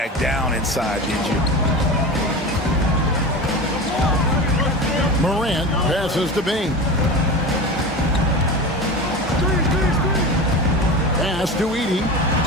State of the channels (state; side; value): normal; both; correlation 0.28